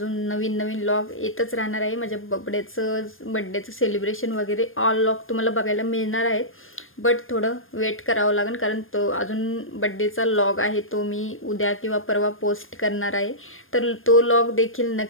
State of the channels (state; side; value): late; right; 0.59 ms